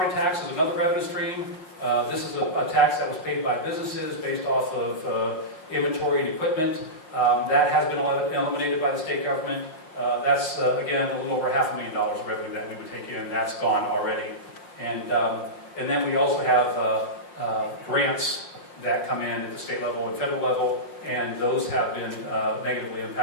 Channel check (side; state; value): right; late; 5.6 ms